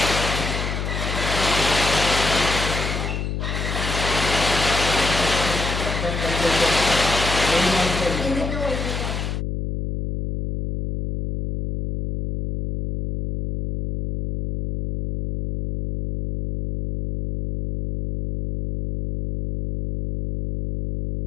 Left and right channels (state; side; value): noise; left; hum, 3 dB below the sound